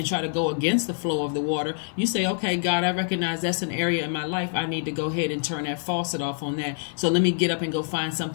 try to go against the flow of the water. You say, okay, God, I recognize that's an area in my life. I need to go ahead and turn that faucet off on that. So let me get up and go find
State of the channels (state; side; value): silent; right; digital silence